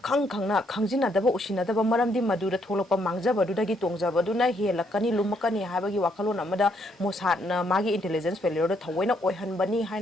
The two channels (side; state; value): both; normal; correlation 0.72